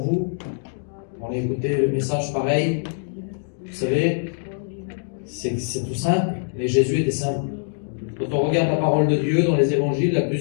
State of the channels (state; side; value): silent; right; digital silence